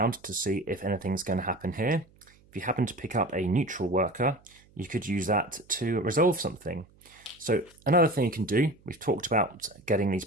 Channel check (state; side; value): noise; right; hum, 29 dB below the sound